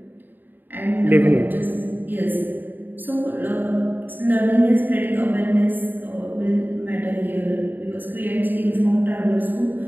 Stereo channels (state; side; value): late; left; 0.090 ms